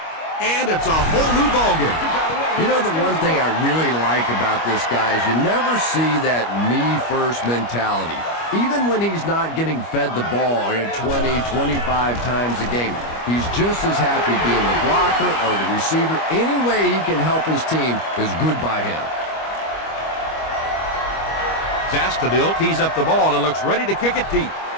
And it's a whole new ballgame. You know, the one thing I really like about this guy is you never see that me-first mentality. Even when he's not getting fed the ball 20, 25 times a game, he's just as happy being the blocker or the receiver. Any way he can help his team is good by him. Zastadil tees up the ball and looks ready to kick it deep.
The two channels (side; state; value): right; late; 25 ms